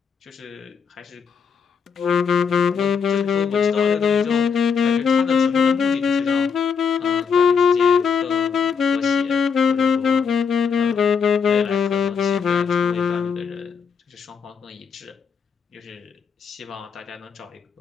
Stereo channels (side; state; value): right; quieter; 6.3 dB